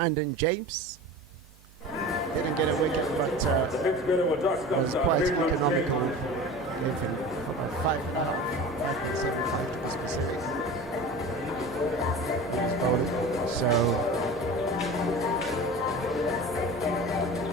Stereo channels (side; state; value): both; normal; correlation 0.35